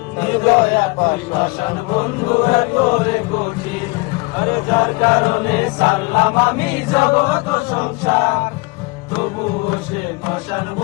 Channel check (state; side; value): quieter; right; 26.6 dB